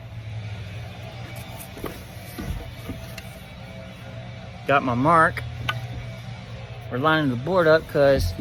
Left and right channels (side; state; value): both; identical; correlation 1.00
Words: Got my mark we're lining the board up because